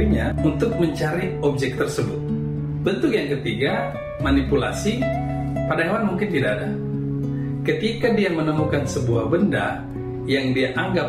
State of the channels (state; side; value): identical; both; correlation 1.00